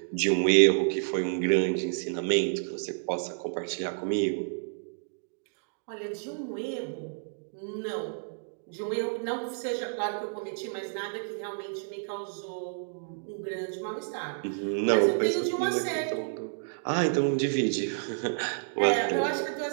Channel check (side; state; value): left; silent; digital silence